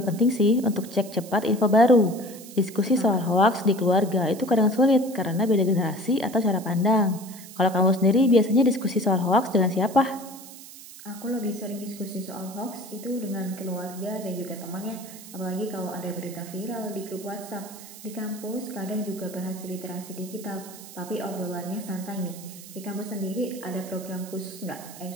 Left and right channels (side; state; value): right; noise; hiss, 16 dB below the sound